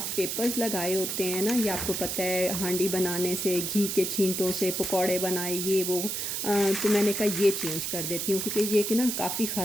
पेपर्स लगाए होते हैं ना, ये आपको पता है हांडी बनाने से, घी के छींटों से पकौड़े बनाए ये वो, तो मैंने कहा ये चेंज कर देती हूँ क्योंकि ये कि ना काफ़ी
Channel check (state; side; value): noise; right; hiss, 2 dB below the sound